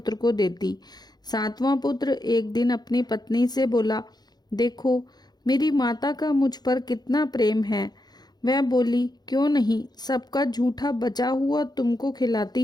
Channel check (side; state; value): right; late; 0.20 ms